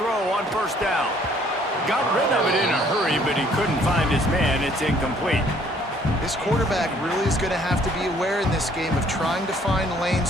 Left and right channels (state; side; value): normal; both; correlation 0.61